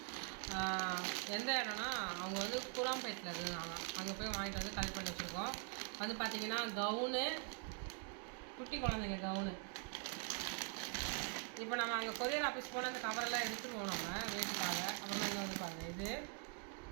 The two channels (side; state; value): left; quieter; 39.8 dB